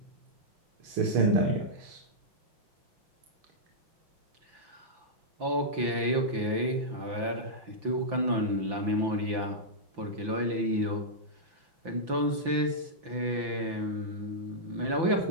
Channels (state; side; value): late; left; 5.9 ms